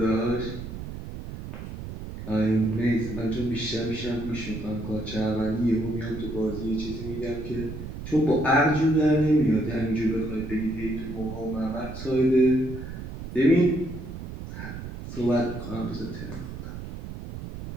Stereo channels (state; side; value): noise; right; rumble, 9 dB below the sound